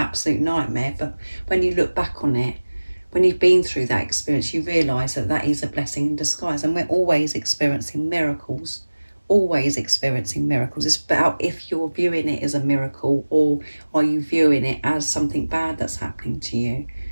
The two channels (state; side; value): inverted; both; correlation -1.00